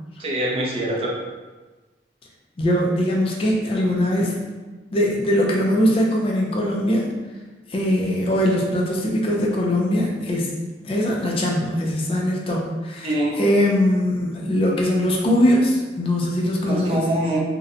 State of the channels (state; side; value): normal; both; correlation 0.69